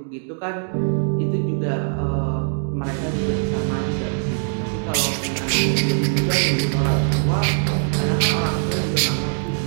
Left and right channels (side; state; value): left; silent; 64 dB below the other